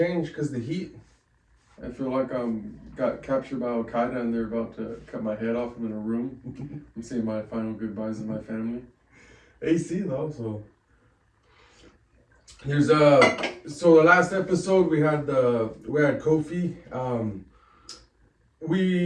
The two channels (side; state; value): both; identical; correlation 1.00